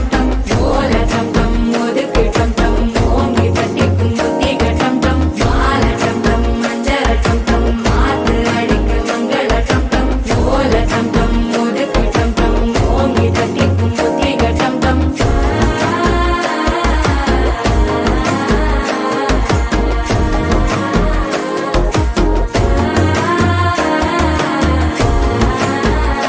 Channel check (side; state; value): both; identical; correlation 1.00